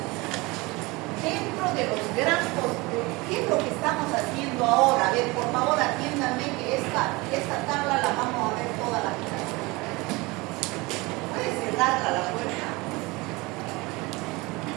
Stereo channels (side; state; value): left; quieter; 23.7 dB